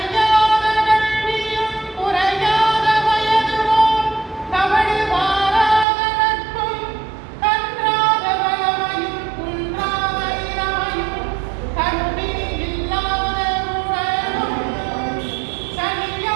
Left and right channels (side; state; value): left; drops out; at 5.9 s